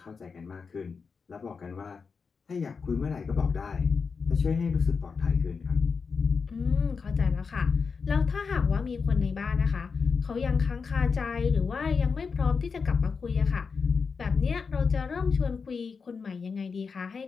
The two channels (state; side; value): quieter; right; 5.3 dB